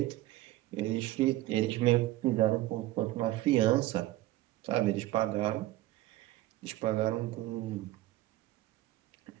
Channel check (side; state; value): left; quieter; 16.3 dB